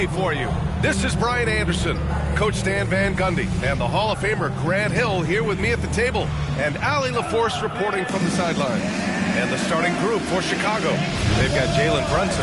for you. This is Brian Anderson, Coach Stan Van Gundy, and the Hall of Famer Grant Hill here with me at the table, and Allie LaForce reporting from the sideline. And the starting group for Chicago, they've got Jalen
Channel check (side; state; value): both; identical; correlation 1.00